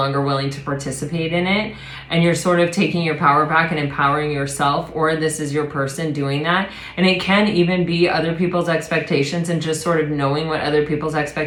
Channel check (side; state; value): both; identical; correlation 1.00